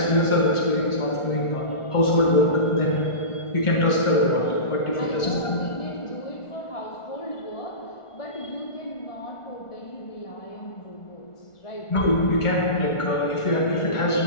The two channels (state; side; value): late; right; 1.4 ms